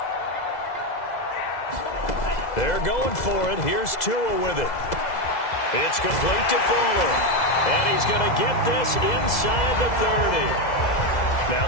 They're going for it. Here's Tua with it. It's complete to Fuller. And he's going to get this inside the 30. Now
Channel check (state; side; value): late; right; 2.0 ms